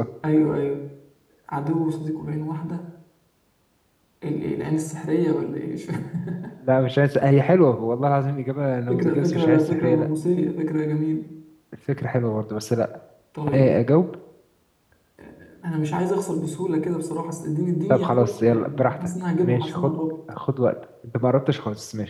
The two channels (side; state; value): both; identical; correlation 1.00